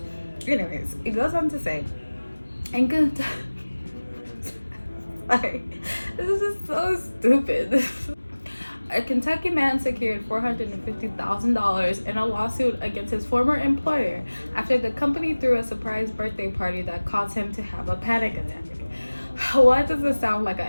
Anyways, it goes on to say, and good. This is so stupid. A Kentucky man secured $450,000 in a lawsuit against his former employer after the company threw a surprise birthday party that caused him to have a panic attack. Why does this sound like an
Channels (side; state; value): both; inverted; correlation -1.00